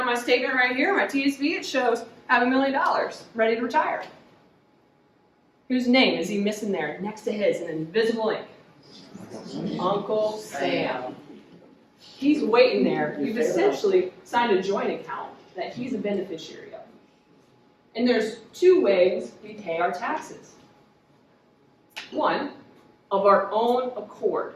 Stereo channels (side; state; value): both; identical; correlation 1.00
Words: my statement right here, my TSB. It shows I have $1 million, ready to retire. Whose name is he missing there next to his in invisible ink? Uncle Sam. He's waiting there. You've essentially signed a joint account that he's a beneficiary of. And there's two ways we pay our taxes. One, of our own accord.